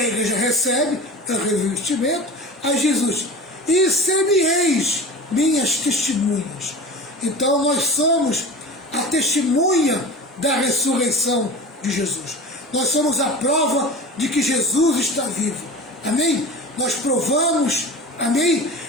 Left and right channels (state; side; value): normal; both; correlation 0.33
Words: igreja recebe, é o revestimento, a Jesus, e ser-me-eis minhas testemunhas. Então nós somos a testemunha da ressurreição de Jesus. Nós somos a prova de que Jesus está vivo. Amém? Nós provamos, amém,